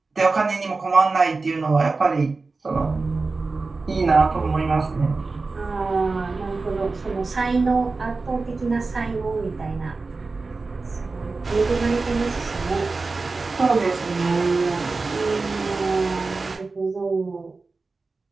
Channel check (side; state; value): left; quieter; 3.9 dB